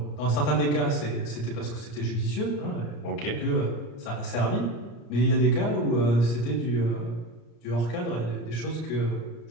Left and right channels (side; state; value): right; late; 34 ms